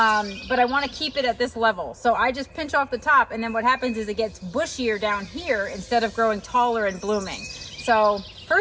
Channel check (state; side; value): identical; both; correlation 1.00